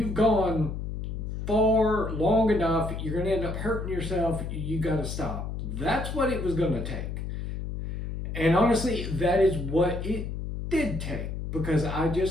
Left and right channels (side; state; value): left; noise; hum, 5 dB below the sound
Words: gone far long enough, you're going to end up hurting yourself, you got to stop. That's what it was going to take. And honestly, that is what it did take, because I